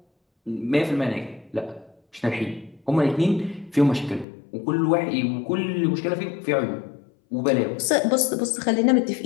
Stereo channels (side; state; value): right; drops out; at 4.2 s